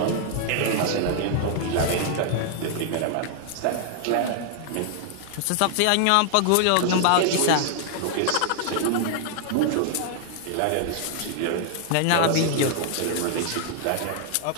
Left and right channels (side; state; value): both; different; correlation 0.00